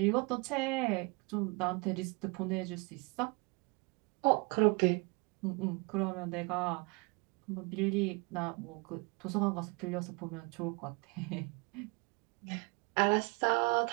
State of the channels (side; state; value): left; quieter; 30.0 dB